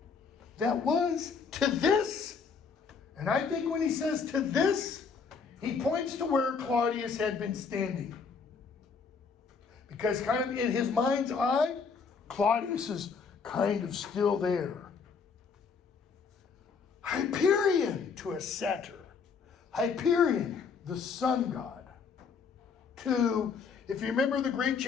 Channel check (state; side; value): quieter; right; 5.5 dB